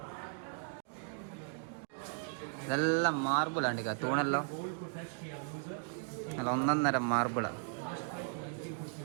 ഇതെല്ലാം മാർബിളാണ് തൂണെല്ലാം നല്ല ഒന്നൊന്നര മാർബിളാണ്.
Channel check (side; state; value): left; silent; 53 dB below the other